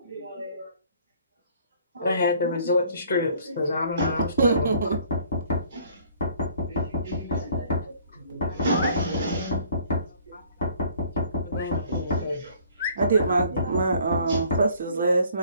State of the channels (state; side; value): inverted; both; correlation -0.57